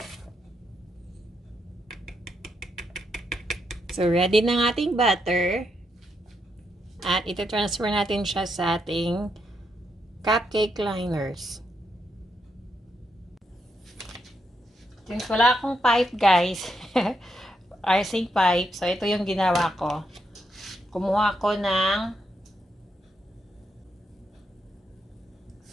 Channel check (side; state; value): both; normal; correlation 0.80